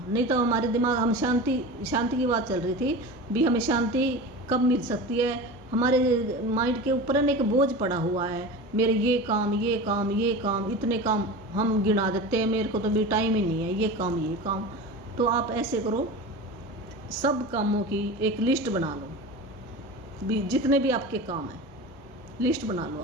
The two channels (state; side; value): normal; both; correlation 0.31